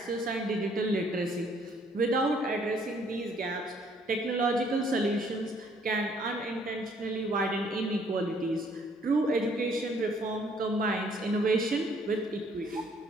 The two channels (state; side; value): normal; both; correlation 0.63